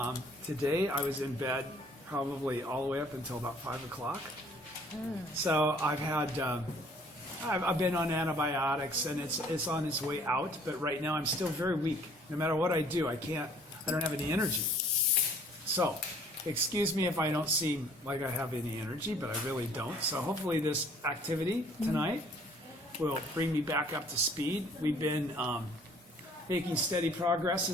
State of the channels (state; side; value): normal; both; correlation 0.56